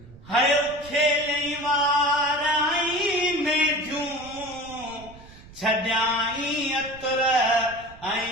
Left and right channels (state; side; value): noise; right; rumble, 20 dB below the sound